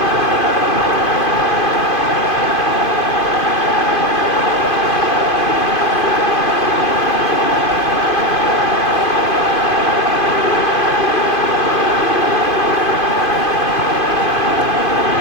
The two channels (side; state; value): right; late; 2.5 ms